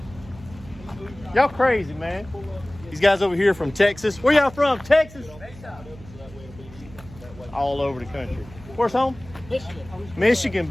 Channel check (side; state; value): right; noise; hum, 19 dB below the sound